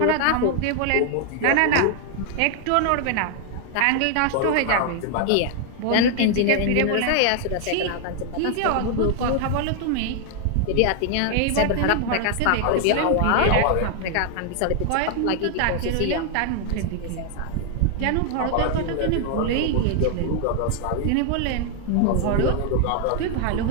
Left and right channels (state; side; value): different; both; correlation 0.00